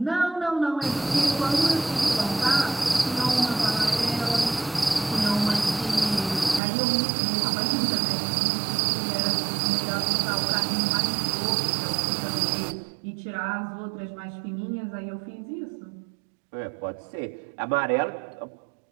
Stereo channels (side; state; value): left; drops out; at 6.6 s